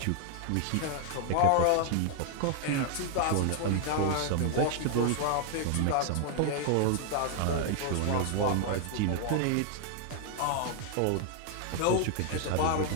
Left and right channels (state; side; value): different; both; correlation 0.00